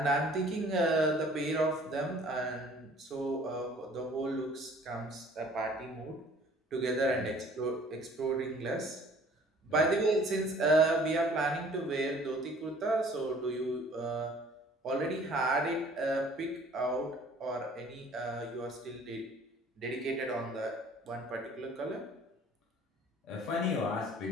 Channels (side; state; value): both; normal; correlation 0.53